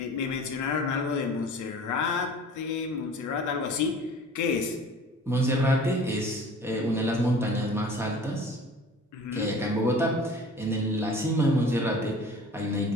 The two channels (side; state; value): both; normal; correlation 0.44